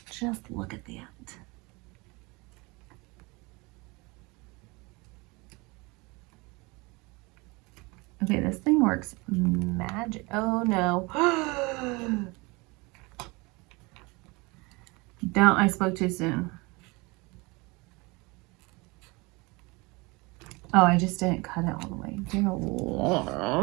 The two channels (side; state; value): left; quieter; 25.8 dB